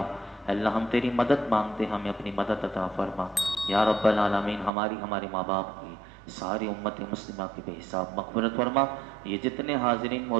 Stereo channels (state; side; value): drops out; left; at 4.7 s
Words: اللہ ہم تیری مدد مانگتے، ہمیں اپنی مدد عطا فرما۔ یا رب العالمین ہمارے ماں باپ کی، ساری امت مسلمہ کی بے حساب مغفرت فرما۔ یہ جتنے حاضرین